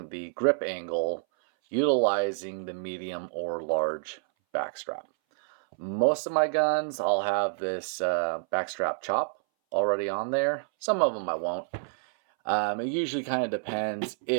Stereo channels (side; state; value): left; silent; 59 dB below the other